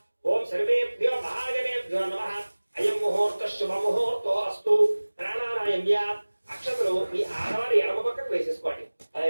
ఓం సర్వేభ్యో మహాజనేభ్యో నమః. అయం ముహూర్త శుభ ముహూర్తో అస్తు. ప్రాణానాయమ్య అక్షతలు మీ ఆడవారి ఎడమ పక్కకు వేసేసుకోండి. అలా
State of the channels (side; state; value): both; inverted; correlation -1.00